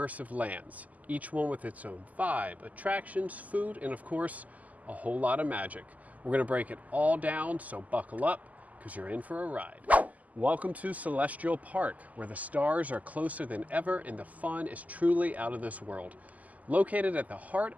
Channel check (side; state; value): left; late; 0.076 ms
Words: lands, each one with its own vibe, attractions, food, and of course, a whole lot of magic. We're gonna break it all down, so buckle up, because you're in for a ride. Welcome to Celestial Park, where the stars are closer than ever and the fun is truly out of this world. Located at the heart